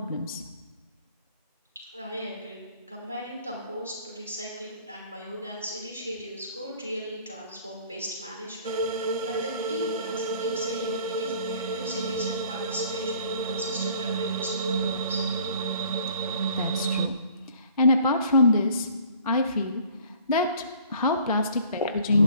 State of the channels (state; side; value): inverted; both; correlation -0.54